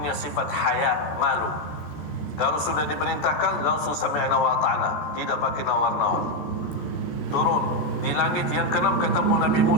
sifat haya, malu. Kalau sudah diperintahkan langsung sami'na wa ata'na, tidak pakai nawar-nawar. Turun di langit yang ke-6 ketemu Nabi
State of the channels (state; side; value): late; right; 14 ms